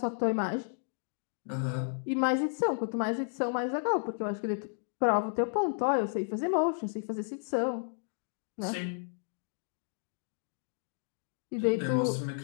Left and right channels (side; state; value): right; silent; digital silence